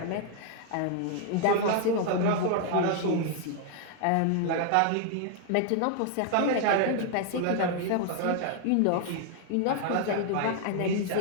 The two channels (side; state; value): both; different; correlation 0.00